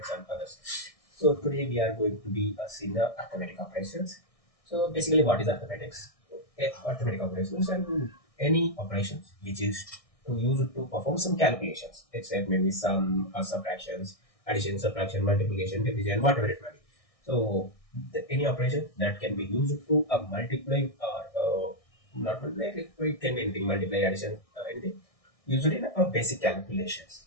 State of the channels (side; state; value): right; late; 1.6 ms